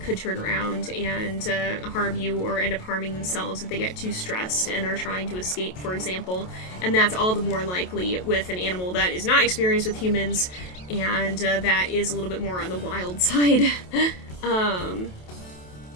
turn around and harm you, or end up harming themselves if they get too stressed and are trying to escape, for example. And that's all the more likely with an animal that is not experienced with humans, and that is a little bit more on the wild side.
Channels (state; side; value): late; right; 28 ms